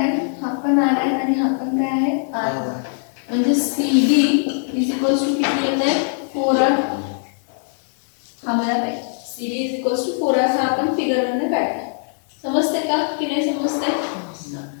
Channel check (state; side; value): silent; right; 65 dB below the other